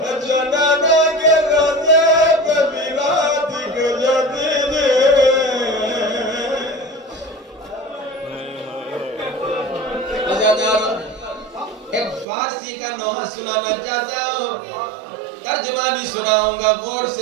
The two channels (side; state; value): left; drops out; at 12.2 s